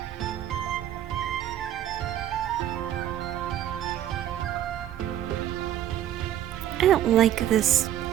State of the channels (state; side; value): quieter; left; 11.6 dB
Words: I don't like this